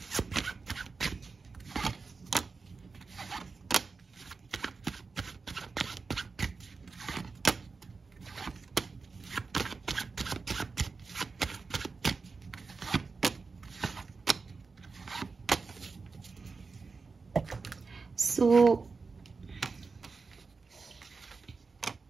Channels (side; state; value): left; quieter; 4.4 dB